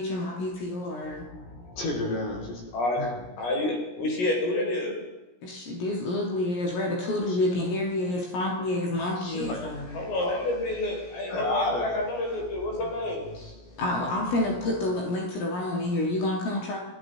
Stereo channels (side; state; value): right; late; 17 ms